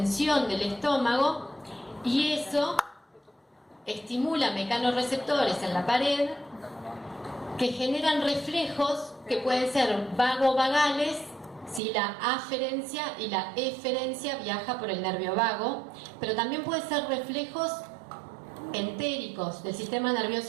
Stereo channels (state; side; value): drops out; left; at 11.8 s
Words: del estómago y eso estimula mecanorreceptores en la pared que generan reflejos que pueden ser vagovagales si la aferencia y la eferencia viaja por el nervio vago, pero también puede ser reflejos entéricos del sistema